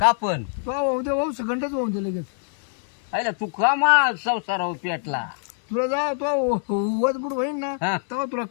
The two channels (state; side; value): silent; right; 63 dB below the other